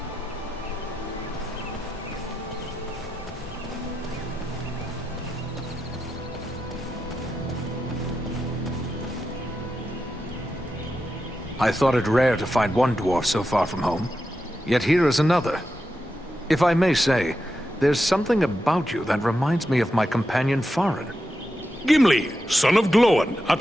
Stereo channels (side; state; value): both; normal; correlation 0.88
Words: I thought it rare to find one dwarf so far from home. Yet here is another. If I may say, there's something about you that reminds me of my companion Farin. Gimli, son of Glóin,